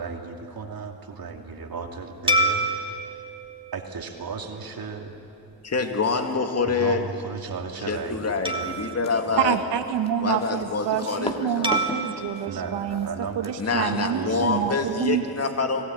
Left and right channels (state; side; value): normal; both; correlation -0.13